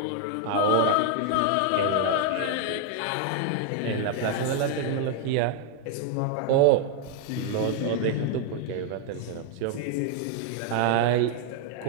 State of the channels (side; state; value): both; different; correlation 0.00